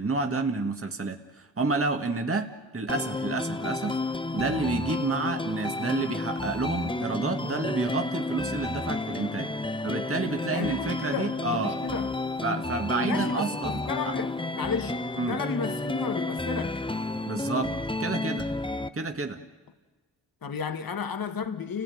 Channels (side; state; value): both; normal; correlation 0.42